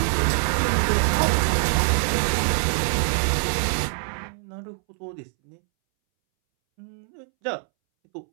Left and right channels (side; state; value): left; silent; 63 dB below the other